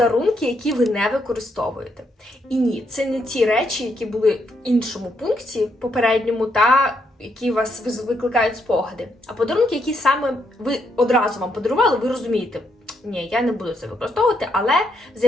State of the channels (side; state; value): both; normal; correlation 0.76